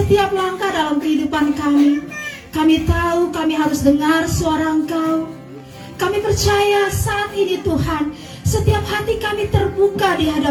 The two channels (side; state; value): both; identical; correlation 1.00